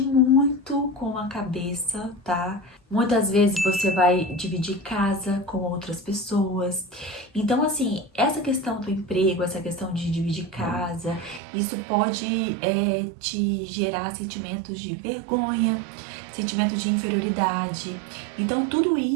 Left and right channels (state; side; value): drops out; left; at 11.4 s